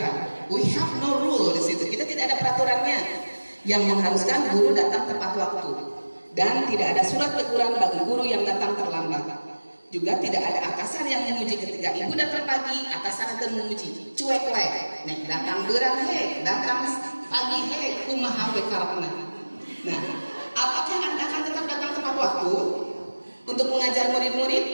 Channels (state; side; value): inverted; both; correlation -1.00